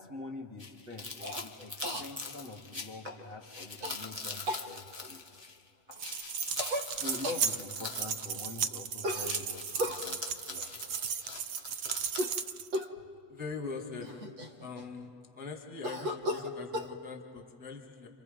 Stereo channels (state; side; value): late; left; 8.1 ms